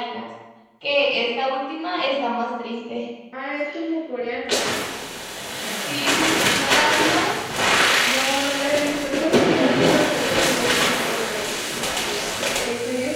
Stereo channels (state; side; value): identical; both; correlation 1.00